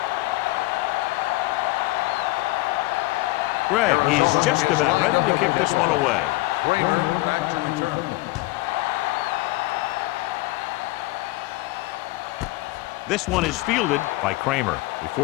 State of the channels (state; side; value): quieter; right; 20.4 dB